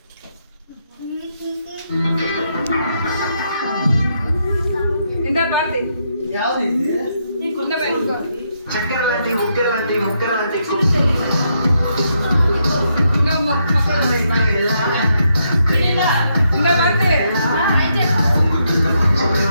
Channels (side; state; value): both; inverted; correlation -0.78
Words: చక్కెర లాంటి ముక్కెర లాంటి ముక్కెర లాంటి